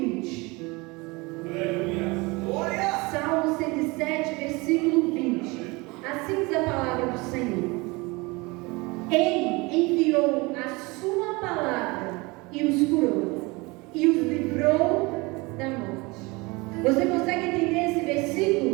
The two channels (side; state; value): left; quieter; 25.1 dB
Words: Salmo 107, versículo 20. Assim diz a palavra do Senhor. Ele enviou a sua palavra e os curou, e os livrou da morte. Você consegue entender esse